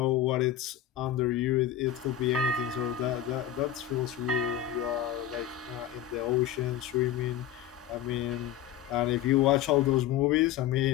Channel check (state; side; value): quieter; right; 11.1 dB